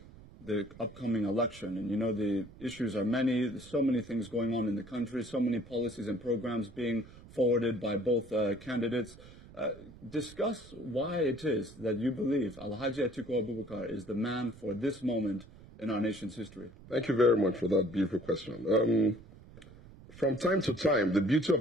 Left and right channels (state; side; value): noise; right; rumble, 20 dB below the sound